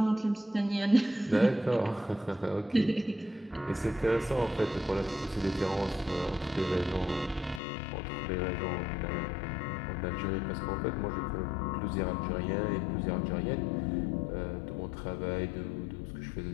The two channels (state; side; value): drops out; right; at 7.6 s